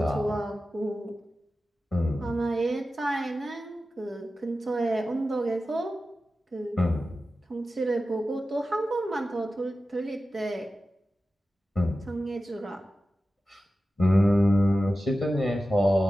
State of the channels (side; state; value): both; normal; correlation 0.94